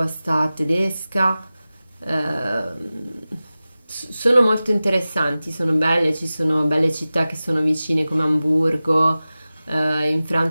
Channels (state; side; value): inverted; both; correlation -0.96